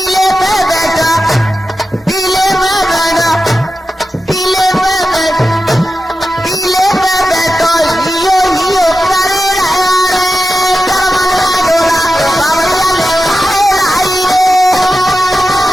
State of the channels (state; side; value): normal; both; correlation 0.91